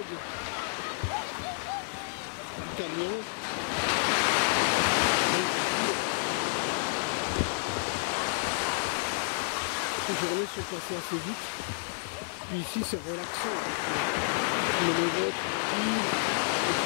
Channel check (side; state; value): right; silent; digital silence